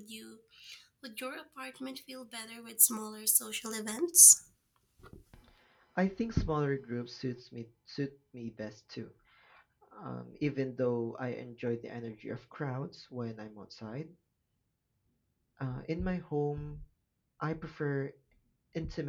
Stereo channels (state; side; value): identical; both; correlation 1.00